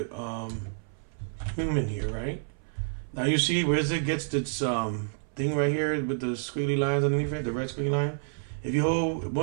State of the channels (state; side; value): silent; left; 59 dB below the other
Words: human here, right? Now you see Wizard gets this thing right here with the squiggly lines underneath it, the red squiggly line. If you hold,